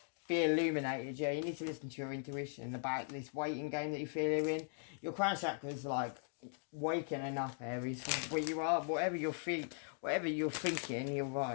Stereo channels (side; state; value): right; silent; digital silence